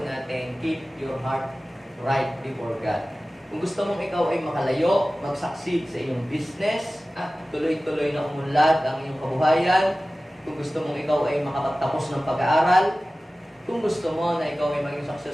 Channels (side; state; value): both; normal; correlation 0.97